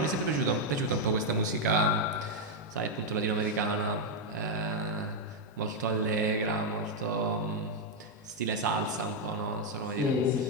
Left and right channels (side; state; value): both; normal; correlation 0.00